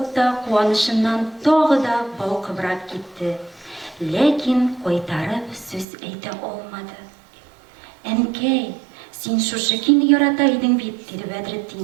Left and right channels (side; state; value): left; drops out; at 5.9 s